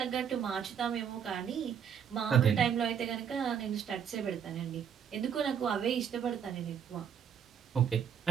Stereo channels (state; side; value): quieter; left; 8.0 dB